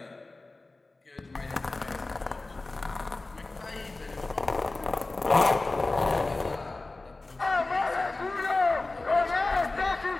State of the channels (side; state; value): right; quieter; 3.2 dB